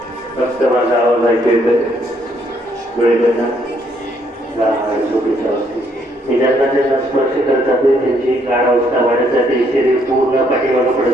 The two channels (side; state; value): both; normal; correlation 0.70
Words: फक्त माझा आवाज ऐकू येतोय. डोळे बंद, गाढ झोपेच्या अवस्थेत. मी ज्यांना ज्यांना स्पर्श करत जाते त्यांची गाढ अवस्था वाढत जाते. शरीर पूर्ण पाठीमागं